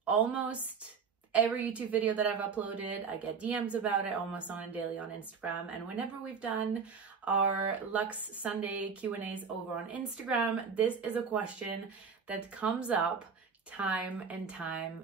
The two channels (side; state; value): left; quieter; 5.9 dB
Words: almost every YouTube video that I've uploaded. I get DMs about it almost on a daily on Instagram. And whenever we've done our Luxe Sunday Q&As over on Instagram, this is a question that comes up time and